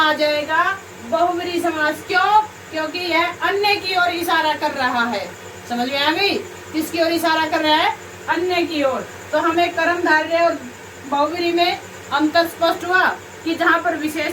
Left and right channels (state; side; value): identical; both; correlation 1.00